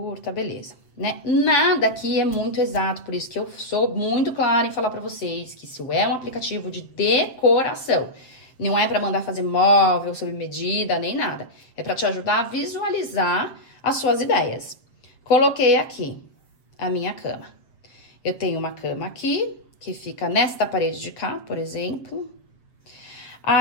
beleza, né? Nada aqui é muito exato, por isso que eu sou muito clara em falar pra vocês que isso é um aplicativo de decoração. Não é pra mandar fazer móvel sob medida, nem nada. É pra te ajudar a visualizar as suas ideias. Coloquei aqui a minha cama. Eu tenho uma cama aqui, que fica nesta parede de cá, por exemplo.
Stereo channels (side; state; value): right; late; 7.6 ms